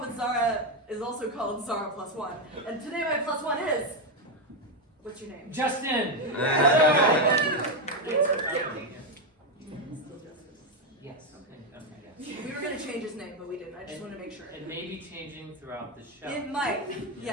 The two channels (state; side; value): normal; both; correlation 0.06